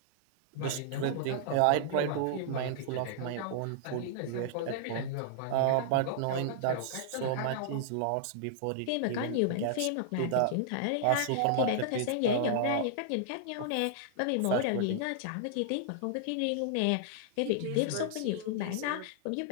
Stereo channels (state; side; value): different; both; correlation -0.01